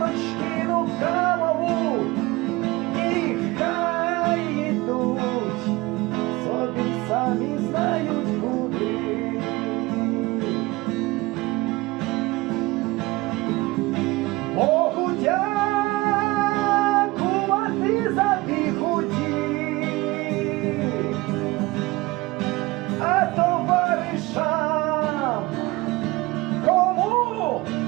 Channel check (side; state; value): left; quieter; 21.7 dB